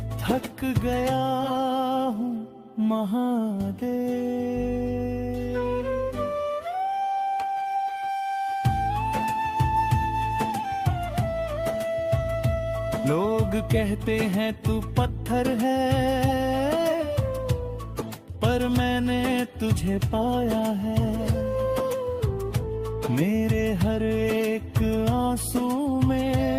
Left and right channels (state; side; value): identical; both; correlation 1.00